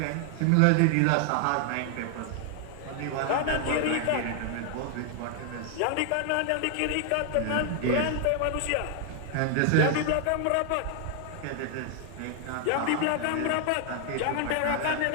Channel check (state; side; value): different; both; correlation 0.00